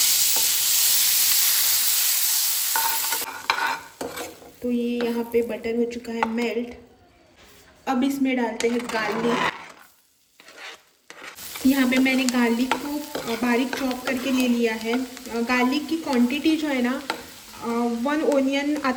तो ये यहाँ पे बटर हो चुका है मेल्ट। अब इसमें डालते हैं गार्लिक। यहाँ पे मैंने गार्लिक को बारीक चॉप करके ले लिया है। गार्लिक की क्वांटिटी जो है ना 1 ओनियन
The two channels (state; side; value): identical; both; correlation 1.00